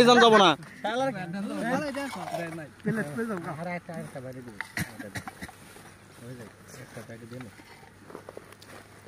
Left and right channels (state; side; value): identical; both; correlation 1.00